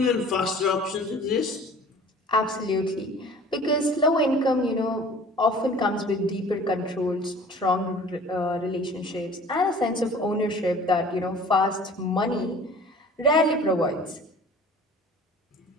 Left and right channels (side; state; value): both; normal; correlation 0.46